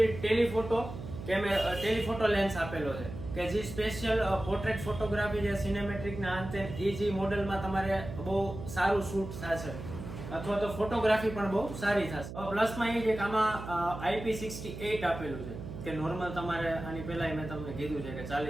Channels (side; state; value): right; noise; hum, 10 dB below the sound